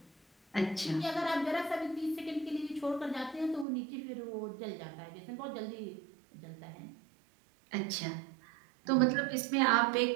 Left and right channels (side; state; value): left; drops out; at 3.7 s